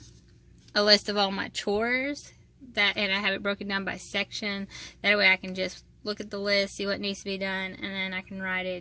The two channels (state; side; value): identical; both; correlation 1.00